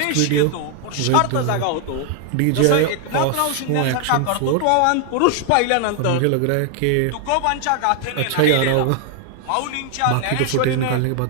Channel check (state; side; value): different; both; correlation 0.00